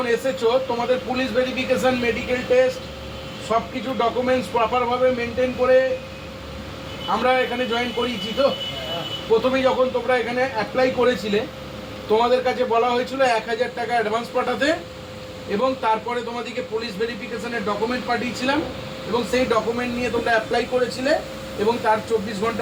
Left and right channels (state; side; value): identical; both; correlation 1.00